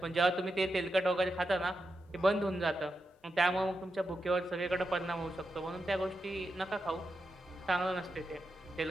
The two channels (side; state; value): both; normal; correlation 0.87